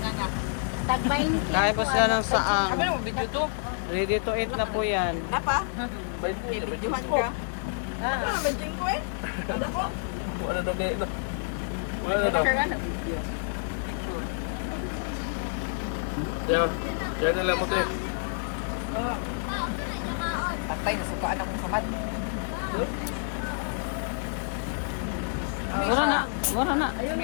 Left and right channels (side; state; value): right; silent; digital silence